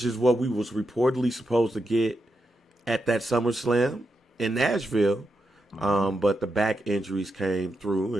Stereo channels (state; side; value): normal; both; correlation 0.85